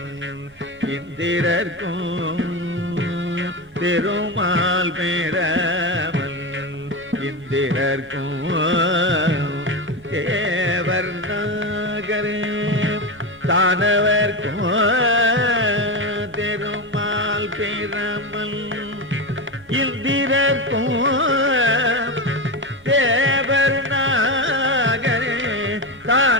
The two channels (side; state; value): both; normal; correlation 0.17